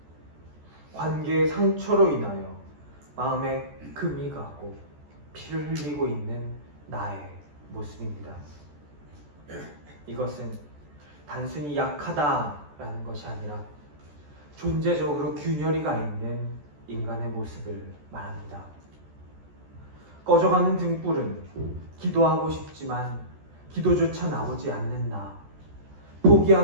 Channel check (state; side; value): late; left; 14 ms